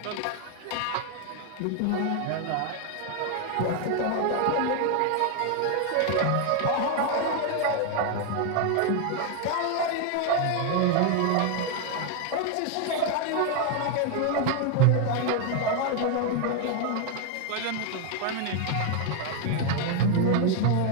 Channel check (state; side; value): different; both; correlation 0.01